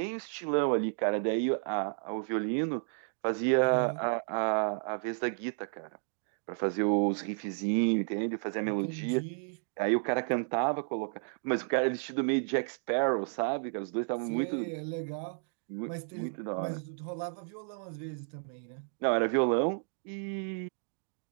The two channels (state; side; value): silent; left; digital silence